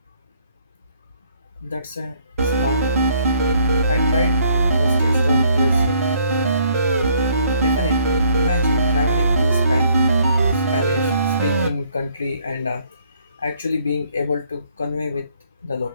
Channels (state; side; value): inverted; both; correlation -0.65